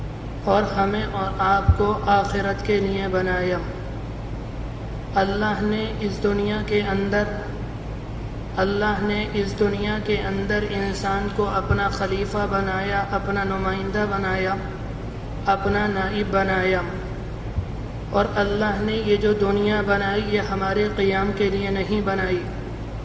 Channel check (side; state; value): both; identical; correlation 1.00